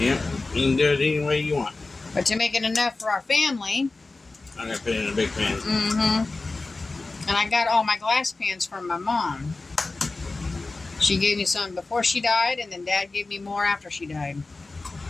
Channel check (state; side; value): quieter; right; 3.5 dB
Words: you can do it any way you want. But to make it enough for our family, I'm going to put it in a big pan. And I got all my glass pans from my mom. She gave me some before she died, and then Dad gave me more after she died.